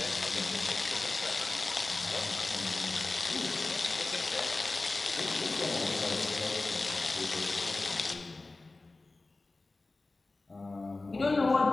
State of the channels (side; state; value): right; quieter; 3.3 dB